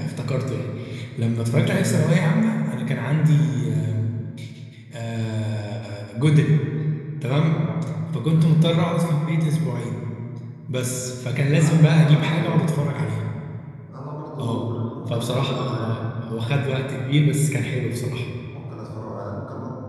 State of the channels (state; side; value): identical; both; correlation 1.00